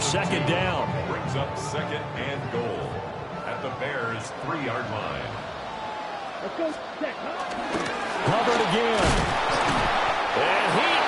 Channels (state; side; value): identical; both; correlation 1.00